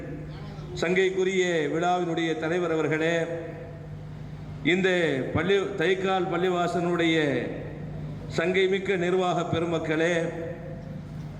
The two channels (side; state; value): both; identical; correlation 1.00